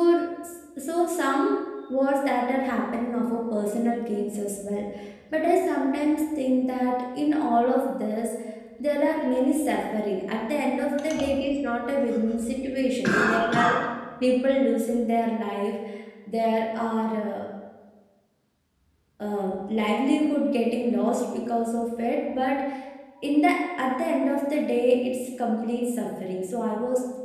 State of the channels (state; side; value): identical; both; correlation 1.00